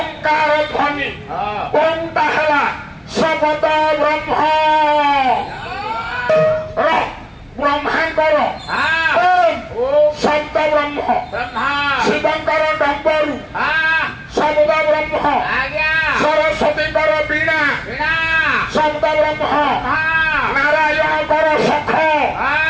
ଧ୍ୱନି ଓମଟା ହେଲା ଶବଦ ବ୍ରହ୍ମ ବ୍ରହ୍ମାଙ୍କର ଶବ୍ଦ ବ୍ରହ୍ମ ଶିବଙ୍କର ଡମ୍ବରୁ ଶବ୍ଦ ବ୍ରହ୍ମ ସରସ୍ୱତୀଙ୍କର ବୀଣା ଶବ୍ଦ ବ୍ରହ୍ମ ନାରାୟଣଙ୍କର ଶଖ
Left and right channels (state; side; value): identical; both; correlation 1.00